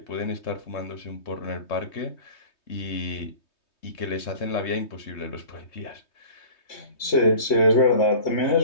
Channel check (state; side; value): late; right; 3.2 ms